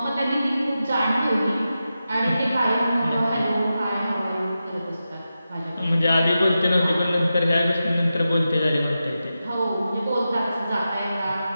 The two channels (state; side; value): inverted; both; correlation -0.91